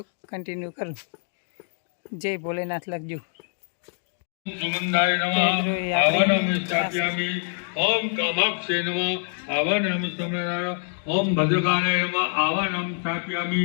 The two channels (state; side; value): silent; right; digital silence